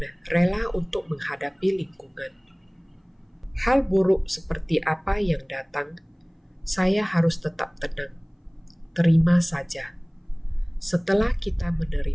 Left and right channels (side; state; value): both; identical; correlation 1.00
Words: rela untuk menghadapi lingkungan. Hal buruk seperti apa yang datang, saya harus tetap tenang. Terima saja. Setelah kita